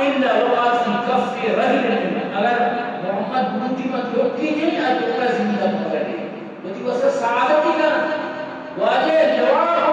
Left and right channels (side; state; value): both; identical; correlation 1.00